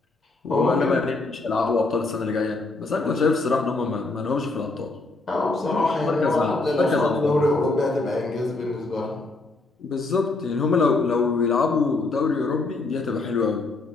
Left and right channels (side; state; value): right; quieter; 3.3 dB